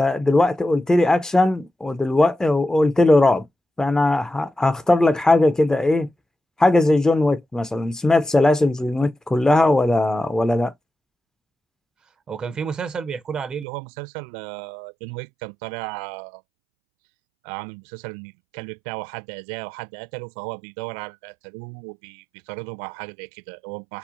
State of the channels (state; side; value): drops out; left; at 13.7 s